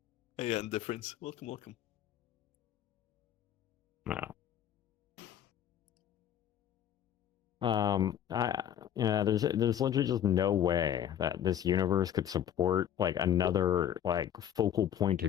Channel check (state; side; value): quieter; right; 10.2 dB